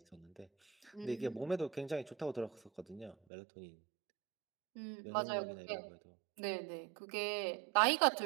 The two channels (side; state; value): left; drops out; at 3.2 s